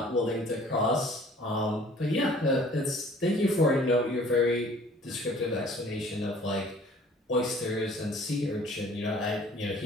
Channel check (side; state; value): both; normal; correlation 0.52